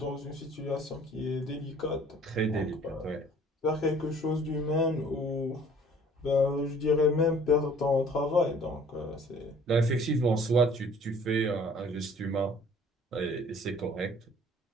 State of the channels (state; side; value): normal; both; correlation 0.54